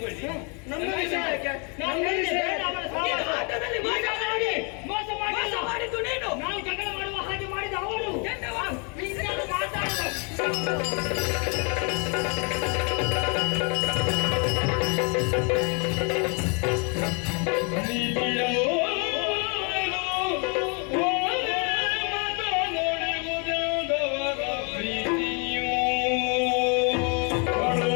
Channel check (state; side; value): quieter; right; 35.7 dB